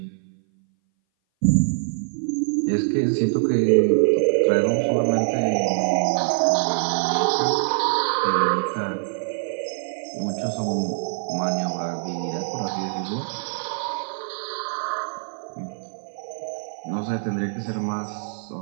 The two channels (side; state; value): left; silent; 59 dB below the other